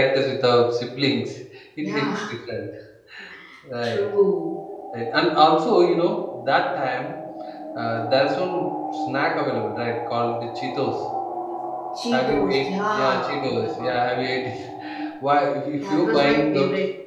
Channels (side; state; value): both; identical; correlation 1.00